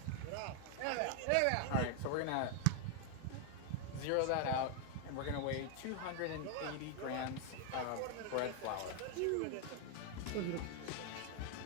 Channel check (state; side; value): different; both; correlation 0.00